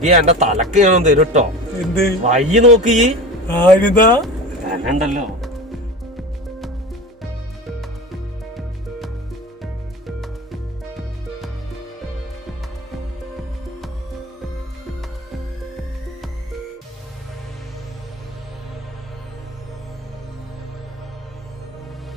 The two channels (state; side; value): normal; both; correlation 0.31